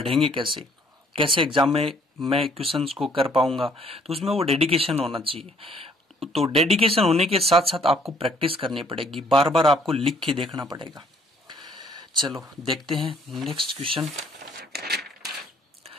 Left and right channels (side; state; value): both; normal; correlation 0.62